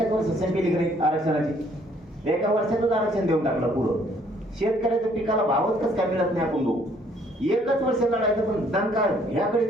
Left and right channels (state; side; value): normal; both; correlation 0.63